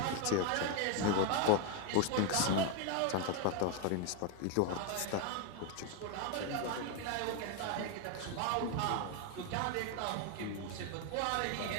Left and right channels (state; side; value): different; both; correlation 0.01